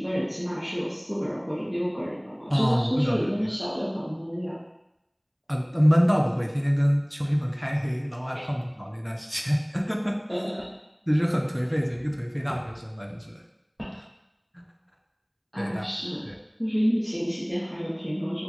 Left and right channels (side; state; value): both; identical; correlation 1.00